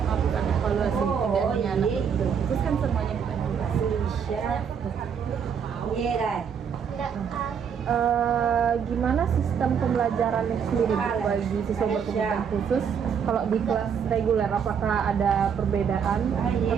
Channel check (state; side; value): quieter; left; 7.2 dB